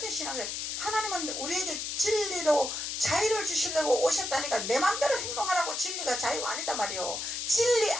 신앙생활. 하나님은 우리에게 진리로 자유를 주시려고 오셨다니까 내 맘대로 행동하라고. 진리가 자유가 아니다 말이요. 진리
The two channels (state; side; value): noise; left; hiss, 4 dB below the sound